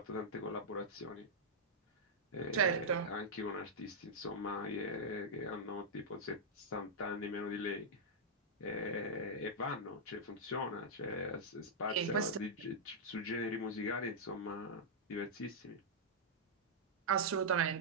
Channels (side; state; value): both; normal; correlation -0.08